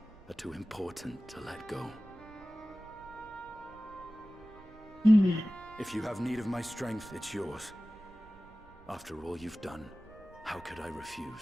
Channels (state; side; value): noise; right; rumble, 22 dB below the sound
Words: are too important to let go. If you have need of my strength, it's yours. After all you've done, how could I